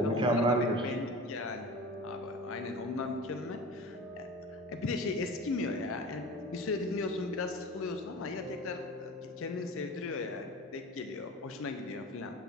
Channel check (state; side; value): normal; both; correlation 0.36